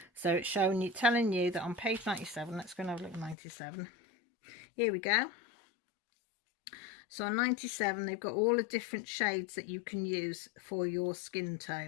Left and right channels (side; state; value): right; drops out; at 3.4 s